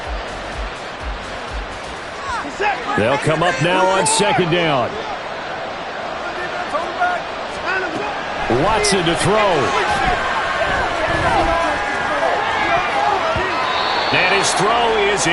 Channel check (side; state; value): both; identical; correlation 1.00